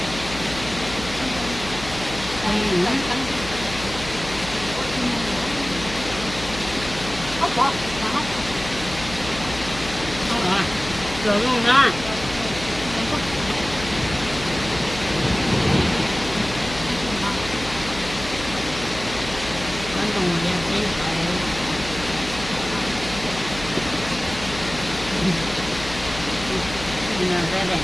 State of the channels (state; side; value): noise; left; hum, 12 dB below the sound